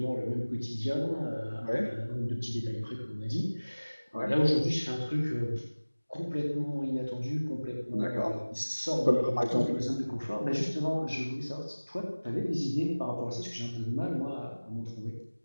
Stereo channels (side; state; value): both; inverted; correlation -1.00